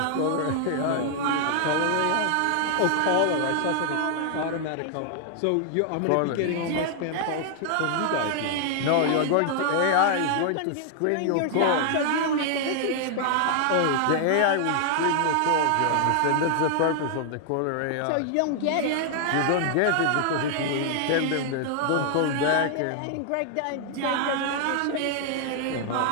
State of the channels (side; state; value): both; different; correlation 0.00